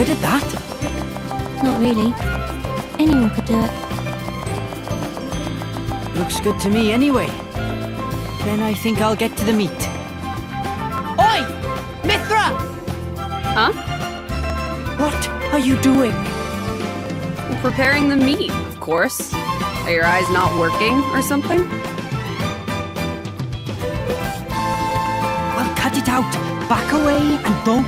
at that. Not really. Anyone could do it. Looks good to me anyway. Then I think I'll get to the meat. Oi! Mithra! Huh? What are you doing? Preparing the meat, of course. Are your eyes not working or something? Well, cut it out. Back away and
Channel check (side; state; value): both; identical; correlation 1.00